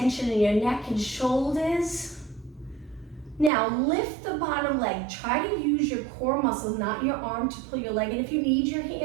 in your neck and shoulders. Now lift the bottom leg. Try to use your core muscle, not your arm, to pull your leg in. If you need your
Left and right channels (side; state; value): left; drops out; at 3.5 s